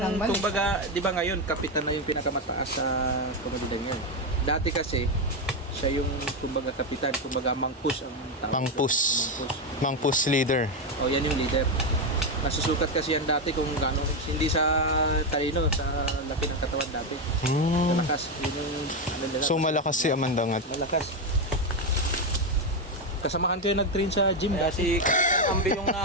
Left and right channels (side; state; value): both; normal; correlation 0.08